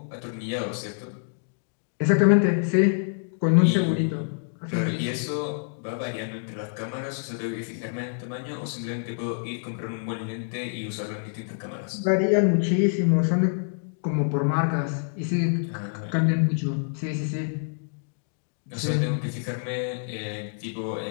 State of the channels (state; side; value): silent; right; digital silence